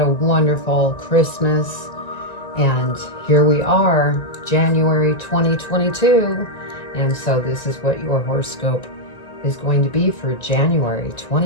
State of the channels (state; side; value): late; right; 1.9 ms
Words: wonderful Christmas. And here we are, January 2022. And so this is what your horoscope is going to be for January